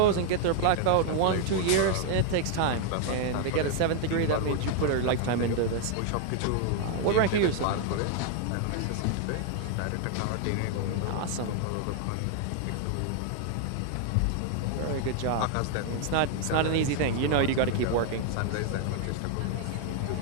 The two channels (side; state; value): both; different; correlation 0.00